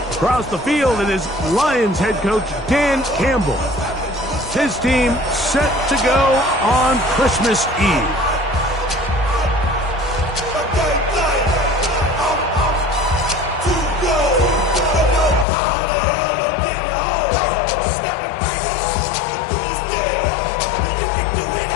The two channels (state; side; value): drops out; right; at 15.5 s